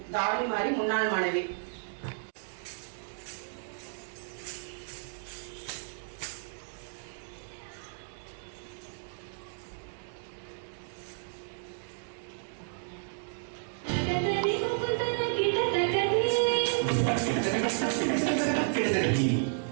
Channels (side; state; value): left; silent; digital silence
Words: தாரணி மாறி முன்னாள் மாணவி.